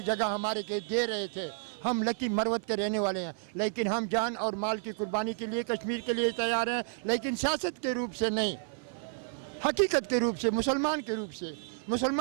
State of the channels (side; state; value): left; silent; 57 dB below the other